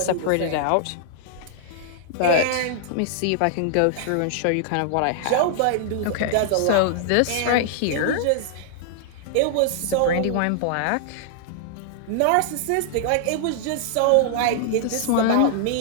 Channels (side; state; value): both; different; correlation -0.01